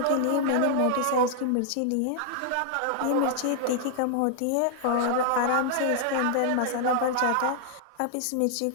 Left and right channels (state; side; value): different; both; correlation -0.01